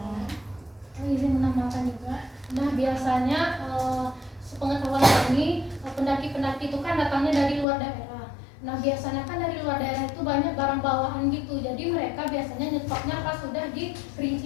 Izin menambahkan juga. Nah biasanya sepengetahuan kami pendaki-pendaki itu kan datangnya dari luar daerah. Nah biasanya kan dari luar daerah itu banyak barang bawaan gitu. Jadi mereka biasanya nyetopnya pas sudah di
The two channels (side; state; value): right; drops out; at 7.7 s